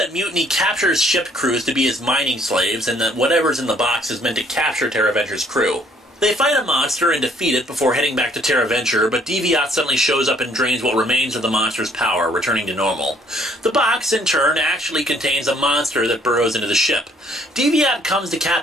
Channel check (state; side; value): normal; both; correlation 0.62